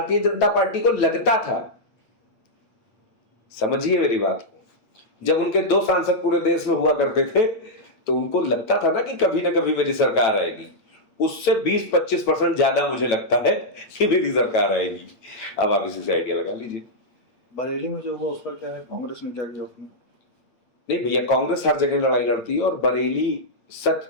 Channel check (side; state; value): right; late; 8.6 ms